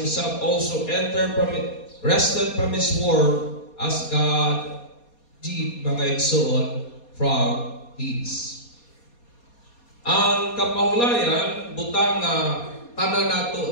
also rested from his work, as God did mga igsoon from His. Ang kapahulayan, butang tanan nato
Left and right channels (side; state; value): right; late; 4.2 ms